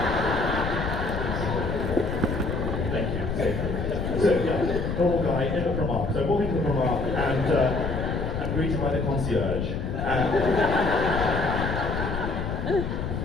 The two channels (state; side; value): noise; left; rumble, 3 dB below the sound